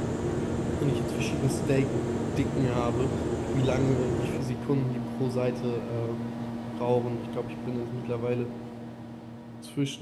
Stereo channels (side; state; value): both; identical; correlation 1.00